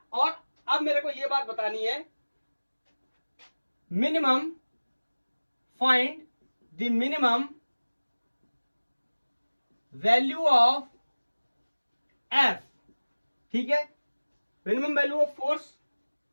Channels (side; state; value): both; inverted; correlation -1.00